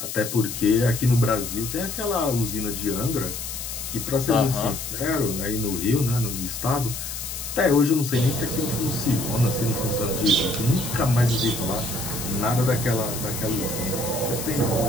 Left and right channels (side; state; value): left; noise; hiss, 6 dB below the sound